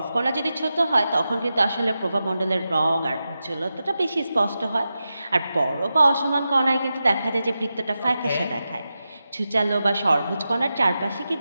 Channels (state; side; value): inverted; both; correlation -0.91